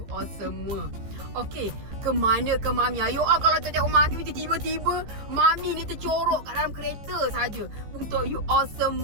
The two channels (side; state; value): left; late; 14 ms